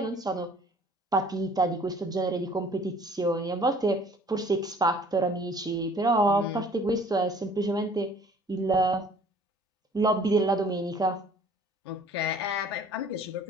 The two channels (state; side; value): normal; both; correlation 0.53